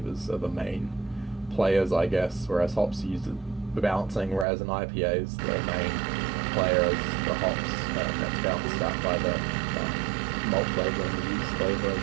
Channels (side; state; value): left; drops out; at 4.5 s